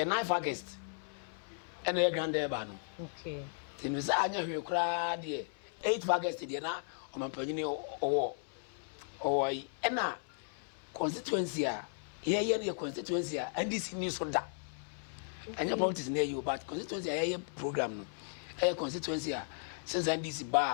9 August ene ye grande ba no okay tinu say anya hwe kra de 8 August de na o mampanyini owo ena constituency a ye ne constituency a NDC ni so da anya politics na you but constituency a ye program no constituency a since NDC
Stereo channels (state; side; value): silent; right; 54 dB below the other